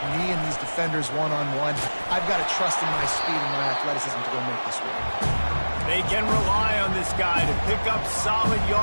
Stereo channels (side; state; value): both; inverted; correlation -1.00